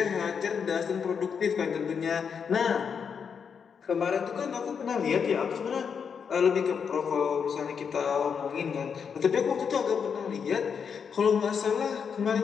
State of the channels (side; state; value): right; quieter; 6.6 dB